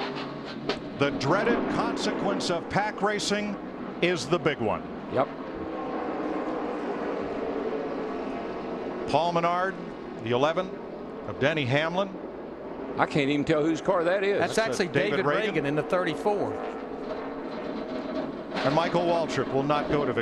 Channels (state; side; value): identical; both; correlation 1.00